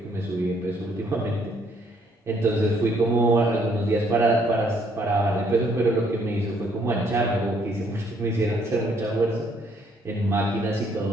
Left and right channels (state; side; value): normal; both; correlation 0.67